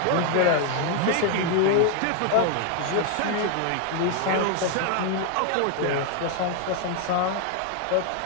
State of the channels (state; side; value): different; both; correlation 0.01